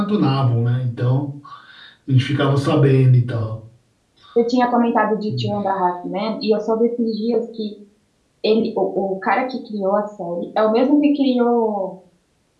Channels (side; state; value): both; identical; correlation 1.00